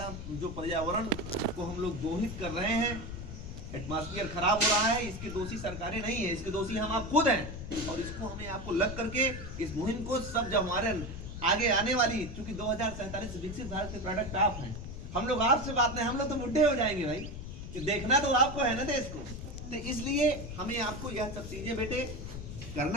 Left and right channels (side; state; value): left; noise; rumble, 9 dB below the sound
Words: जो पर्यावरण को हम लोग दोहित कर रहे हैं, एटमॉस्फेयर खराब हो रहा है, इसके दोषी सरकारें नहीं है, इसके दोषी हम आप खुद हैं। और इसको हमें आपको लग करके इस मुहिम को सब जब हमारे आगे आने वाली, चूंकि 2047 विकसित भारत के प्रोडक्ट आप हैं, हम लोग आपसे बात नहीं, हम लोग तो बुढ़े हो जाएंगे भाई, कि देखना तो आपको है ना देश को। तो इसलिए हमें आपको यह सब चीजें बेटे